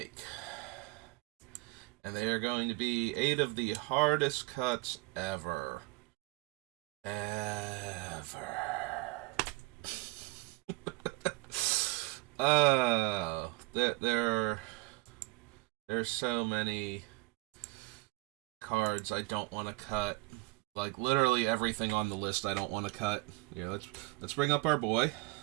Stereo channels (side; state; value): left; quieter; 23.3 dB